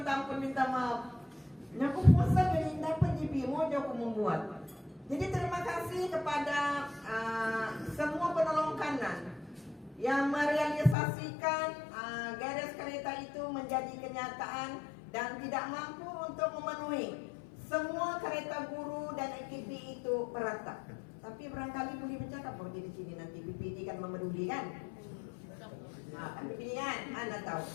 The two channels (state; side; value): drops out; right; at 11.0 s